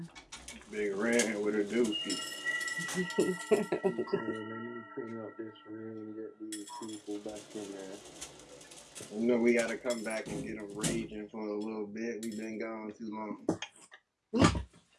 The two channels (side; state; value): both; identical; correlation 1.00